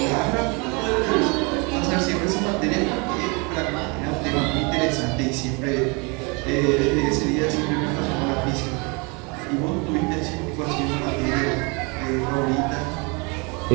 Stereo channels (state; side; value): quieter; left; 30.5 dB